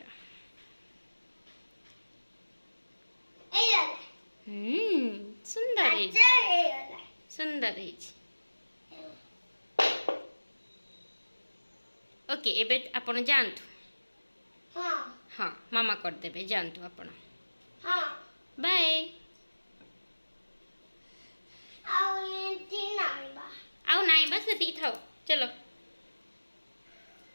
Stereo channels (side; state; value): both; inverted; correlation -1.00